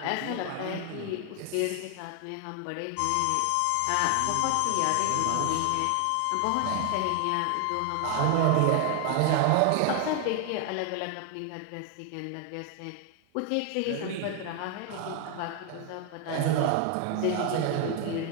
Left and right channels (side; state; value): both; different; correlation 0.00